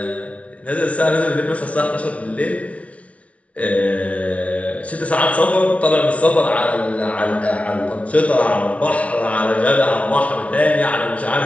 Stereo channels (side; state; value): right; late; 0.064 ms